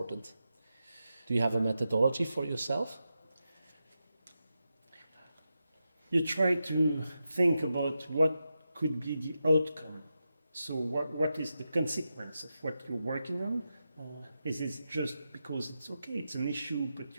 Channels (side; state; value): both; inverted; correlation -0.89